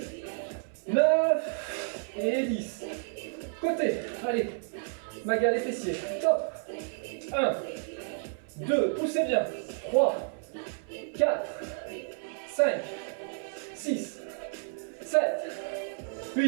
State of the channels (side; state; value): left; silent; 57 dB below the other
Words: 9 et 10. Côté, allez, maga les fessiers, top. 1, 2, poussez bien. 3, 4, 5, 6, 7,